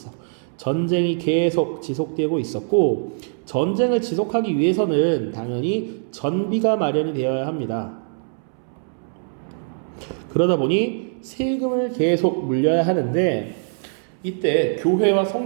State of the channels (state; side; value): silent; left; 64 dB below the other